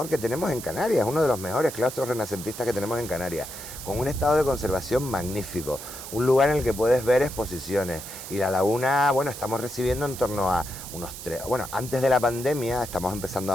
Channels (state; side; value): noise; right; hiss, 11 dB below the sound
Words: que tenemos en Canarias, uno de los mejores claustros renacentistas que tenemos en Canarias, con un estado de conservación magnífico, un lugar en el que puedes ver exposiciones. Y la laguna, bueno, estamos recibiendo en torno a unos antes de la pandemia, estamos empezando